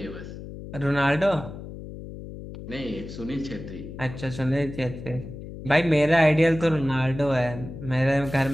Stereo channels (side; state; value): left; noise; hum, 12 dB below the sound